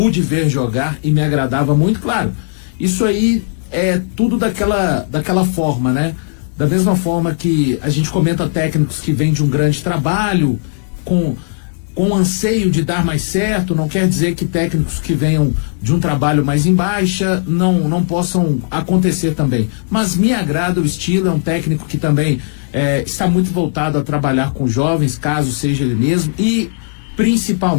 ver jogar e me agradava muito, claro. Isso aí é tudo daquela forma, né? Da mesma forma que a gente comenta técnicos que vêm de um grande trabalho, com anseio de dar mais certo, não quer dizer que técnicos que venham de um trabalho mais em baixa não possam acontecer também. Mas me agrada o estilo, é um técnico que também está muito voltado a trabalhar com jovens, caso seja ele mesmo, e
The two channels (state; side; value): silent; right; digital silence